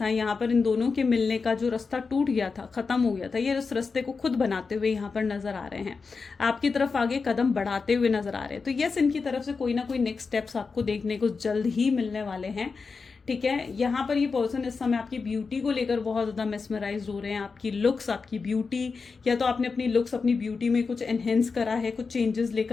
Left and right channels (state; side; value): quieter; right; 4.8 dB